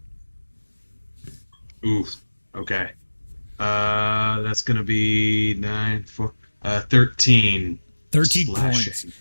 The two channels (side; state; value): both; inverted; correlation -1.00